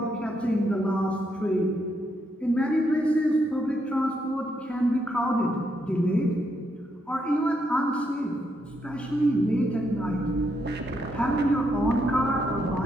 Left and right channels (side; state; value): both; normal; correlation 0.78